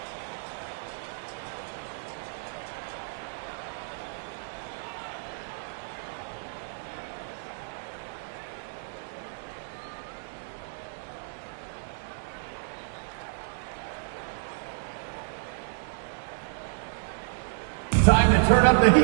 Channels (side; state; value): left; silent; digital silence